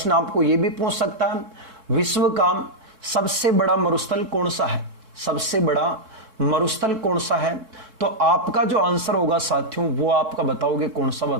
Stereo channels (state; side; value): late; left; 3.6 ms